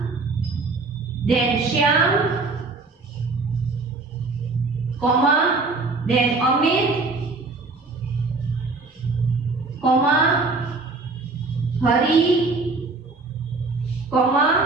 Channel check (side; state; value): left; quieter; 3.7 dB